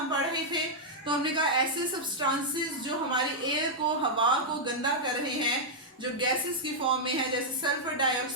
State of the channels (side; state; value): both; normal; correlation -0.05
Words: पढ़ रहे थे, तो हमने कहा ऐसे सब्सटेंसेस जो हमारी एयर को, हवा को गंदा कर रहे हैं, जो गैसेस की फॉर्म में है, जैसे सल्फर